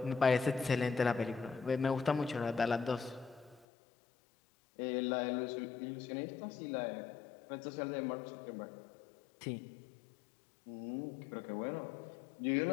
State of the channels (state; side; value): drops out; right; at 3.7 s